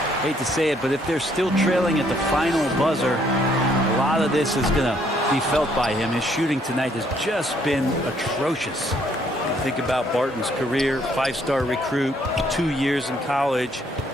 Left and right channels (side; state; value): both; normal; correlation 0.67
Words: Hate to say it, but if they're still trailing at the final buzzer, a lot of this is going to be felt by him. His shooting tonight has just been atrocious. Think about Barton's career, 5-star recruit, 2 years in college,